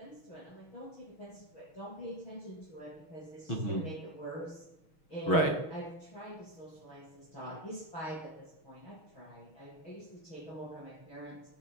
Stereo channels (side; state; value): right; late; 6.3 ms